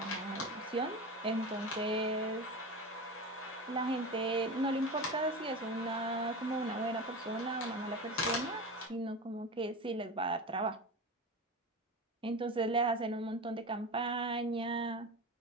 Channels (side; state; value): both; normal; correlation 0.26